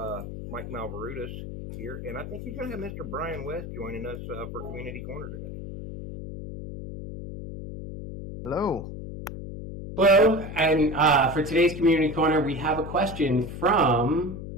Mike Malverutis here, and I think he's going to have Mr. Brian West joining us for Community Corner today. Hello. Hello, and for today's Community Corner, we have a question from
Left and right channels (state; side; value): noise; left; hum, 9 dB below the sound